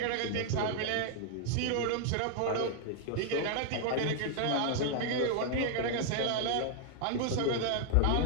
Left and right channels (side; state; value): both; different; correlation -0.01